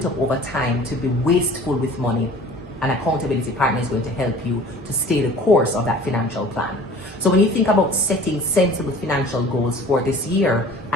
up over time to be wasteful with money, an accountability partner is going to help you to stay the course of that financial plan. So when you think about setting sensible financial goals for this year,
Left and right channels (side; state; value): both; normal; correlation 0.46